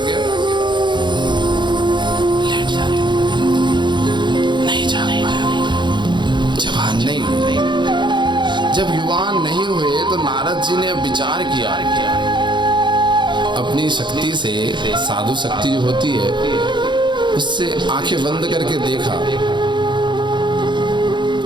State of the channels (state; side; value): late; left; 0.22 ms